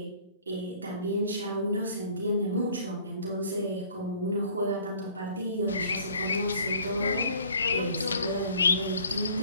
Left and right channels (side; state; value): both; inverted; correlation -0.54